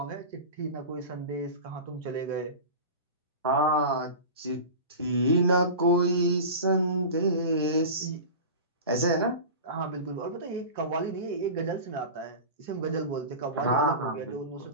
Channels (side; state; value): both; inverted; correlation -0.31